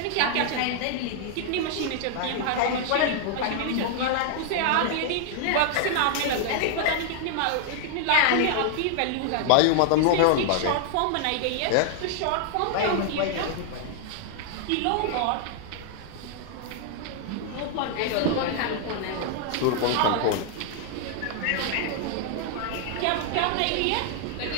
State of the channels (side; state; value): both; different; correlation 0.00